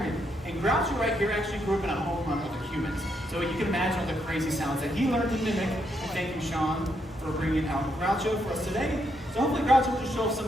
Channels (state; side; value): normal; both; correlation 0.77